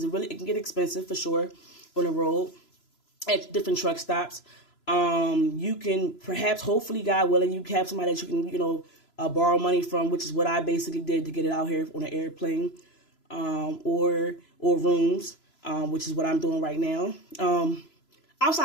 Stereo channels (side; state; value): right; late; 3.0 ms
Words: it can get expensive for sure on the road at different truck stops. You can perhaps, hopefully, God willing, you have somebody that you can, borrow money from, which is what I basically did to get it out here on an airplane, or rooms, which is what I'm doing right now.